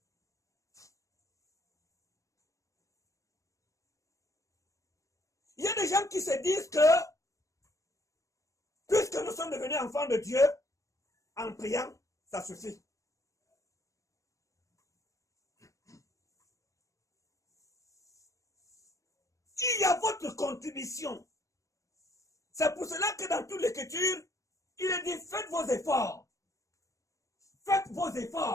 Il y a des gens qui se disent que, puisque nous sommes devenus enfants de Dieu, en priant, ça suffit. Il y a votre contribution. C'est pour cela que dans toute l'écriture, il est dit, faites vos efforts. Faites vos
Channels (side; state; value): right; late; 0.16 ms